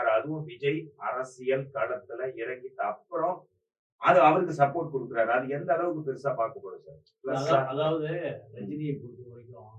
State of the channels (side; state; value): both; identical; correlation 1.00